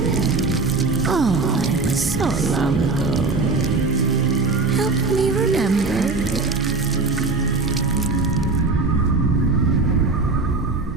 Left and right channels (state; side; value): quieter; left; 3.9 dB